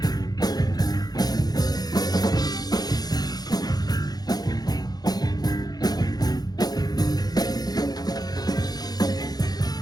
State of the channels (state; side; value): late; right; 0.19 ms